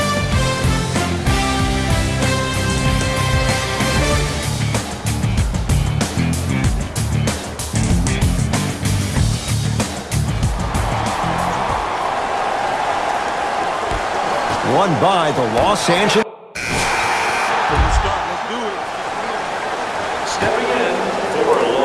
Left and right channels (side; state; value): both; identical; correlation 1.00